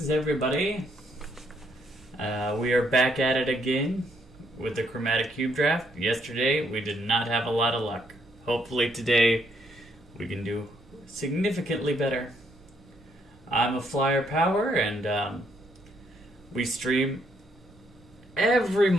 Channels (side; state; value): both; normal; correlation 0.73